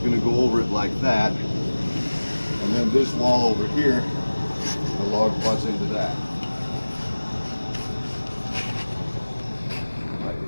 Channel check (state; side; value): inverted; both; correlation -1.00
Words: to go over it like that, and then this wall over here, the log butts into that.